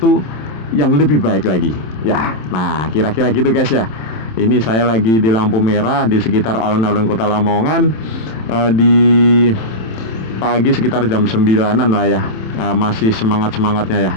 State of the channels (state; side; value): late; right; 27 ms